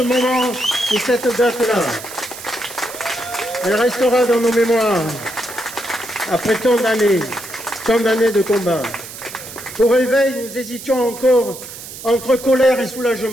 moment et cette date-là. Elle restera dans nos mémoires après tant d'années de combat. Au réveil, nous hésitions encore entre colère et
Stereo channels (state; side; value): noise; right; hiss, 13 dB below the sound